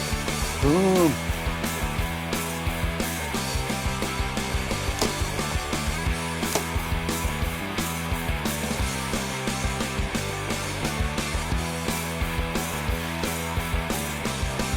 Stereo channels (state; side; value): identical; both; correlation 1.00